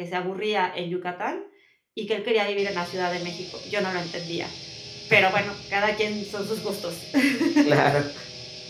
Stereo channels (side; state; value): both; identical; correlation 1.00